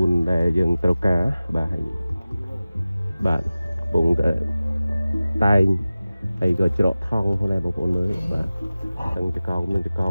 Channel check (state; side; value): inverted; both; correlation -0.96